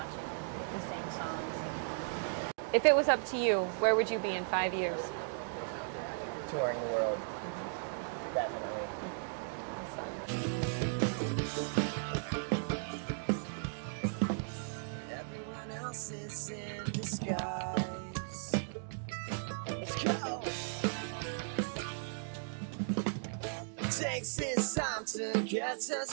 them make the same songs. If it was up to you, where would you be in 5 years? Touring the world, definitely. Everyone else is in disguise. Let's go. Takes his time to get to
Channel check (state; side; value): silent; left; digital silence